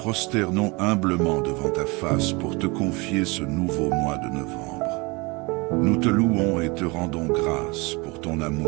humblement devant ta face pour te confier ce nouveau mois de novembre. Nous te louons et te rendons grâce pour ton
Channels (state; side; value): quieter; left; 26.7 dB